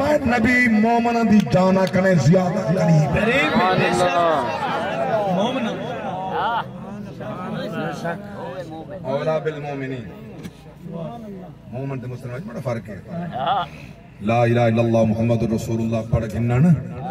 نبی مومن دی جانا کرے زیادہ قریب مومن اولا بالمومنین مومن تے مسلمان بڑا فرق ہے لا الہ الا اللہ محمد رسول اللہ پڑھ گھننا نا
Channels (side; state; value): both; identical; correlation 1.00